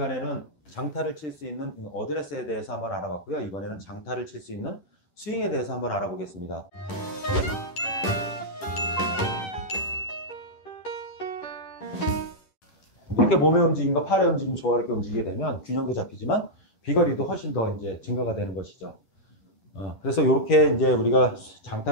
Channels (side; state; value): right; late; 10 ms